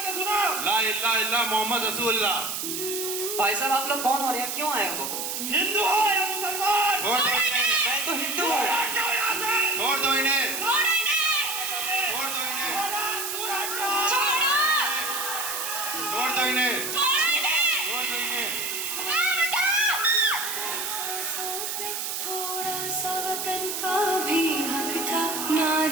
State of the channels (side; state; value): right; noise; hiss, 3 dB below the sound